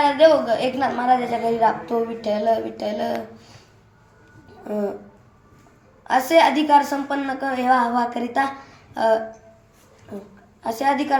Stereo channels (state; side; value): identical; both; correlation 1.00